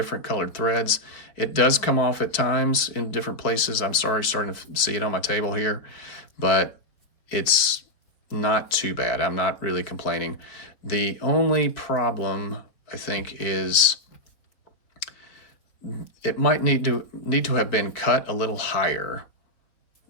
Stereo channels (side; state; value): right; late; 4.6 ms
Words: colored threads. It does come off at times in different places. I'm sorry, starting to see it on my table here, but it's not too bad. I'm not really complaining. The only problem, I think, is it might need to have been cut a little higher